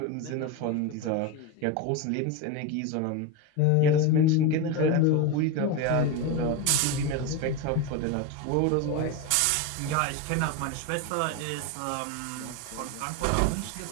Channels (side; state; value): both; different; correlation 0.04